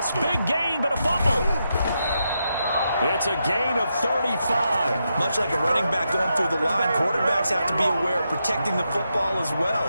Big gain, but a fumble. It's a gain of 35. Much like a running back going through the line, quarterbacks have to be aware of protecting the football as well.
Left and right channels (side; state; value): both; inverted; correlation -0.84